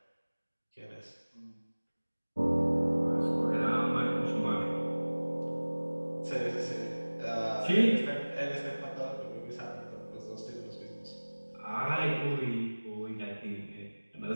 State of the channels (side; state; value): both; inverted; correlation -1.00